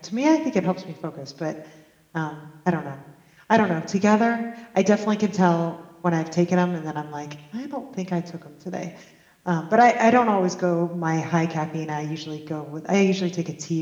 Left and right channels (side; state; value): both; identical; correlation 1.00